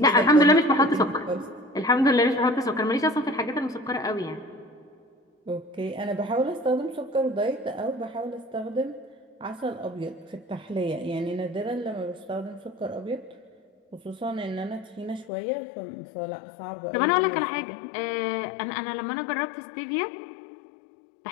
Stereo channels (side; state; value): right; drops out; at 15.3 s